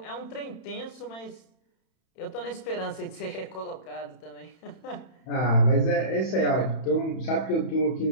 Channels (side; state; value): right; late; 31 ms